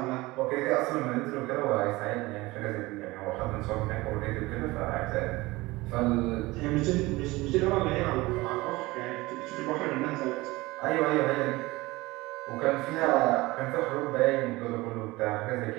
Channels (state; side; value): quieter; left; 20.8 dB